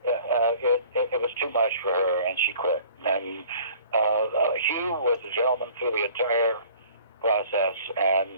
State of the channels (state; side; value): inverted; both; correlation -0.50